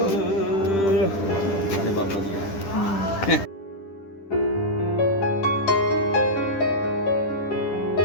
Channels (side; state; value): right; late; 10 ms